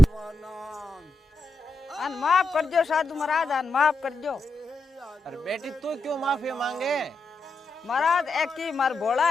अन माफ कर दो साधु महाराज अन माफ कर दो अरे बेटी तू क्यों माफी मांगे महाराज एक ही मार भोला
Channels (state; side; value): normal; both; correlation 0.88